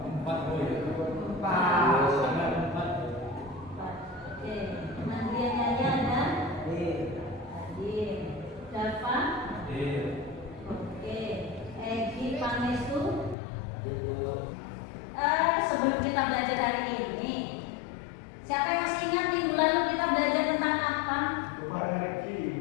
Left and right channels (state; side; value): drops out; right; at 13.4 s